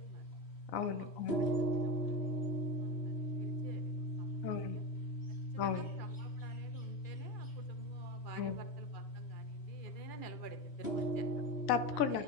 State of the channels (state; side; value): late; right; 3.1 ms